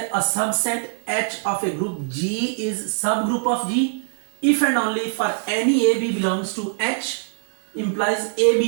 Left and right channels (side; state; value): left; silent; digital silence